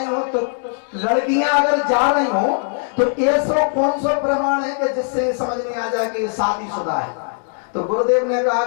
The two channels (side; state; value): right; silent; 66 dB below the other